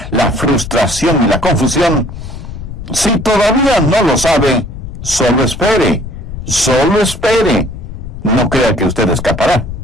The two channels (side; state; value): left; noise; rumble, 10 dB below the sound